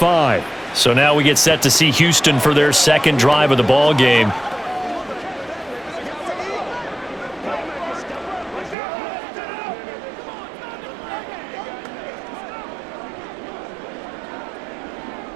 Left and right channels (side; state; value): left; drops out; at 8.8 s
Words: So now we get set to see Houston for their 2nd drive of the ball game.